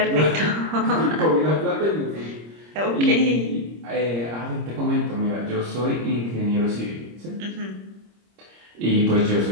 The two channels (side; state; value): left; late; 26 ms